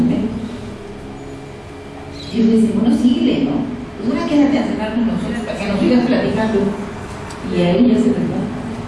Y ellos dicen, bueno, síguele, ¿no? Pues ahora quédate a cenar con nosotros para que nos sigas platicando. Y a ellos se les va.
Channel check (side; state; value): both; identical; correlation 1.00